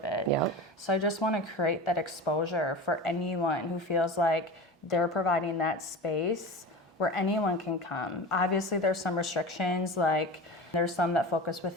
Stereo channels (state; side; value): normal; both; correlation 0.30